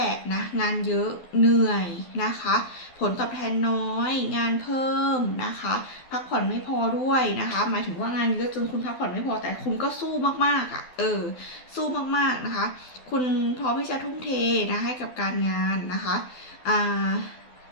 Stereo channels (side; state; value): right; late; 12 ms